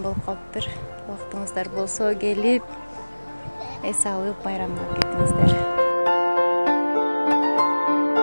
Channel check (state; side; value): inverted; both; correlation -1.00